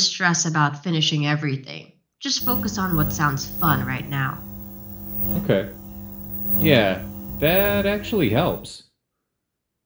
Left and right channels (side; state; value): both; identical; correlation 1.00